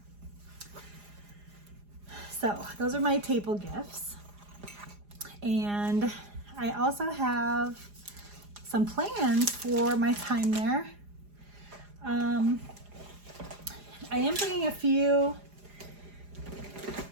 So those are my table gifts. And I also have some plans for my time there. I am bringing a few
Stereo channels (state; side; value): late; left; 4.9 ms